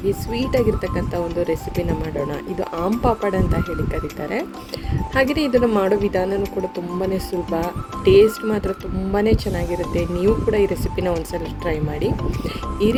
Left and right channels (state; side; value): identical; both; correlation 1.00